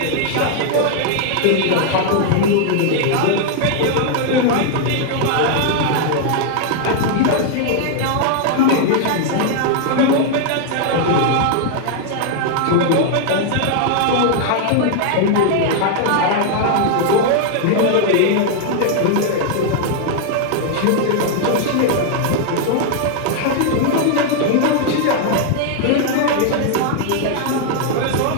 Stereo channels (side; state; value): both; different; correlation 0.00